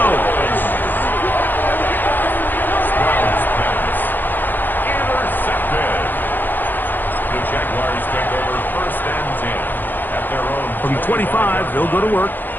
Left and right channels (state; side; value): late; right; 0.089 ms